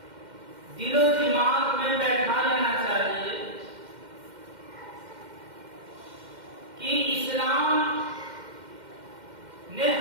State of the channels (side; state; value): left; late; 2.1 ms